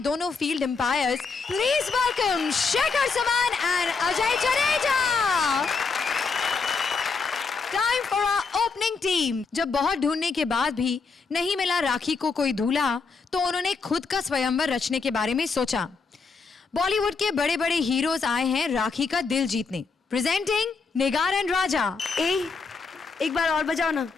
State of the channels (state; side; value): quieter; right; 4.7 dB